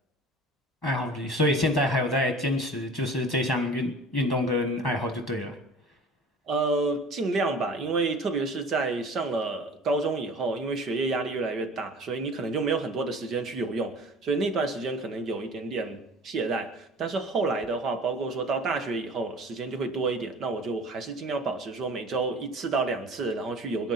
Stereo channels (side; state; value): both; normal; correlation 0.43